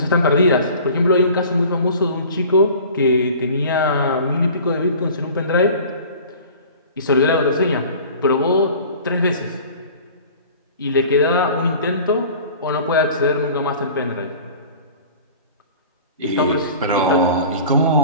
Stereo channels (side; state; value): both; inverted; correlation -0.43